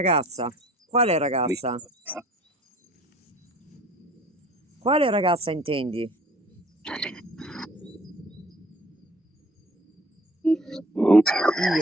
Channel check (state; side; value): normal; both; correlation 0.52